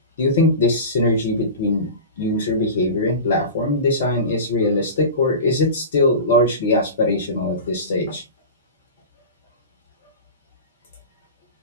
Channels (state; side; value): inverted; both; correlation -0.31